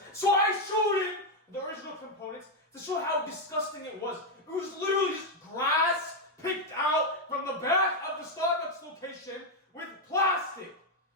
So I showed him the original components to show how disgusting it was. It was literally just grass picked out from the back of the Starbucks location with plastic.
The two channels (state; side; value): normal; both; correlation 0.03